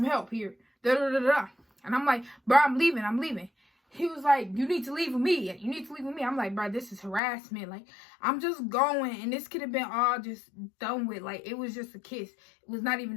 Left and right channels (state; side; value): drops out; right; at 7.2 s